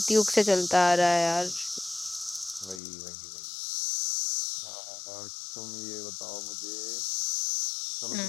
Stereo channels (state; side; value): drops out; right; at 2.8 s